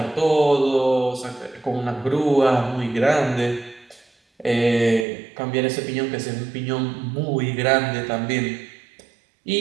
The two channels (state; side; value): drops out; left; at 5.1 s